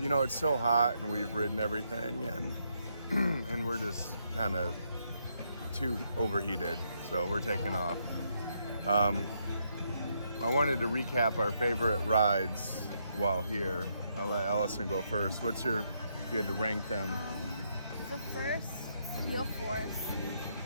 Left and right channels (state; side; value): inverted; both; correlation -0.77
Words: you know, it's so hot and we've ridden everything, and and we're just kind of too overheated, so we're taking off. I wanted to recap our favorite rides while here. I'll let Allison go first. What's your, if you had to rank them? So first, Steel Force,